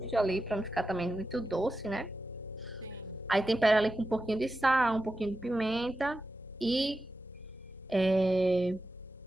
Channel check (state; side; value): normal; both; correlation 0.91